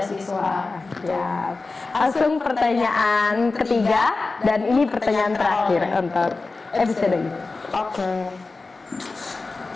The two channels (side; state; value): right; quieter; 3.7 dB